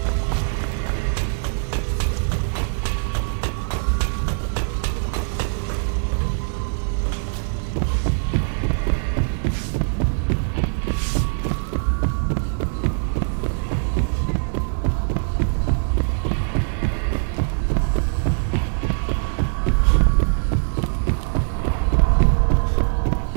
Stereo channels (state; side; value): silent; left; 60 dB below the other